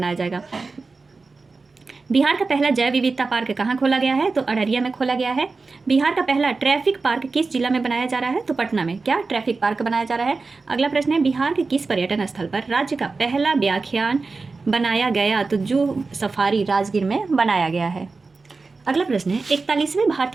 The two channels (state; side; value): quieter; left; 4.0 dB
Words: जाएगा। बिहार का पहला जैव विविधता पार्क कहाँ खोला गया है? तो अररिया में खोला गया है। बिहार का पहला ट्रैफिक पार्क किस जिला में बनाया जा रहा है? तो पटना में। क्या ट्रैफिक पार्क बनाया जा रहा है? अगला प्रश्न है, बिहार के किस पर्यटन स्थल पर राज्य का पहला व्याख्यान बनाया गया? तो जू सफारी राजगीर में बनाया गया है। अगला प्रश्न है, 41वें